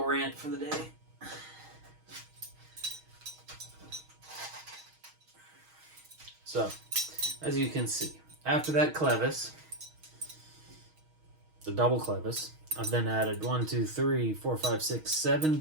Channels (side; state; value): left; late; 6.4 ms